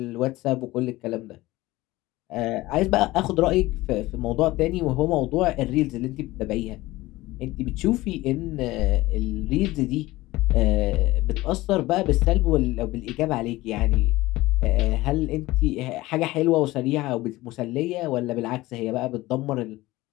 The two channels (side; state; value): right; quieter; 18.7 dB